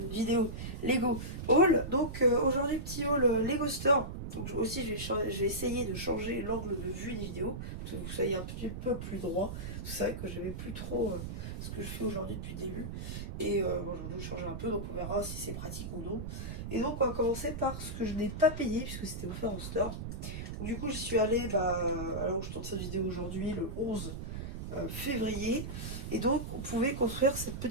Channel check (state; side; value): noise; right; rumble, 6 dB below the sound